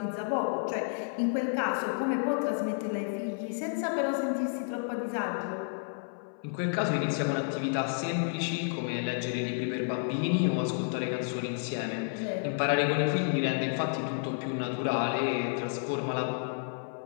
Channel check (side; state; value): right; silent; 57 dB below the other